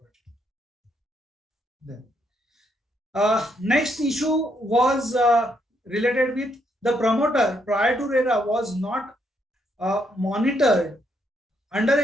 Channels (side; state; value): both; normal; correlation 0.75